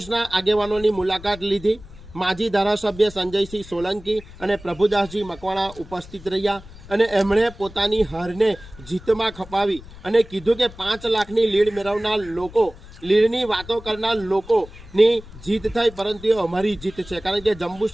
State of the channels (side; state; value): left; noise; rumble, 18 dB below the sound